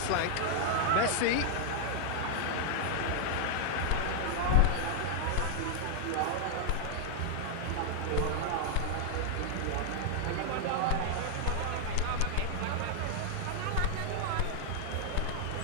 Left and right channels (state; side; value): different; both; correlation -0.01